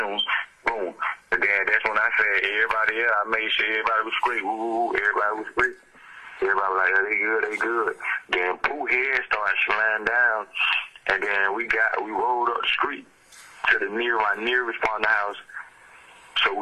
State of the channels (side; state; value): both; identical; correlation 1.00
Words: Boom. And then that's when I said everybody else, I made sure everybody was straight. Woo, everybody was straight. Everybody was like, oh, they good. Then Pooh head started sliding down. And then we rolled up the street to my nearest partner house so